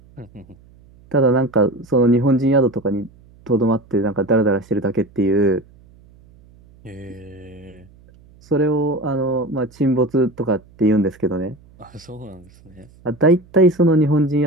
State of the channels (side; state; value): right; noise; hum, 27 dB below the sound